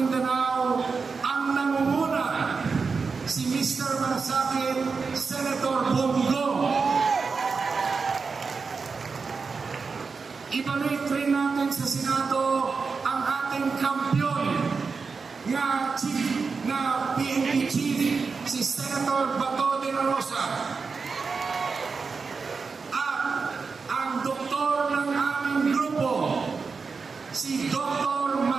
ang nangunguna, si Mr. Malasakit, Senator Bongo. Ibalik rin natin sa Senado ang ating kampiyon na PNP Chief, si Senator Bato de la Rosa. At ang doktor ng aming grupo, si Dr.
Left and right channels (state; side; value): quieter; left; 4.9 dB